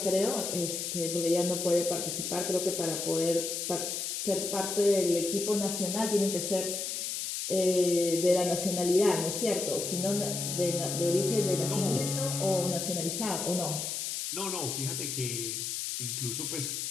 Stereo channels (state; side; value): noise; left; hiss, 3 dB below the sound